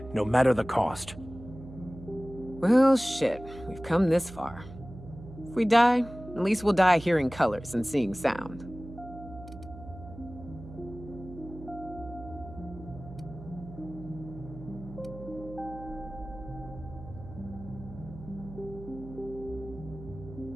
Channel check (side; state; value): right; noise; hum, 15 dB below the sound